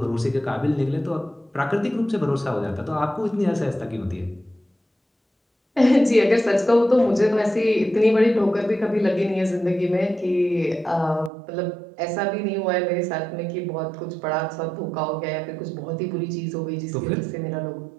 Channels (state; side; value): drops out; left; at 11.3 s